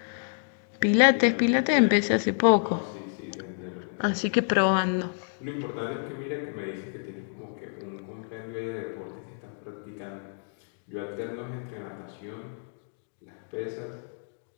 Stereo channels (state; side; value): silent; right; digital silence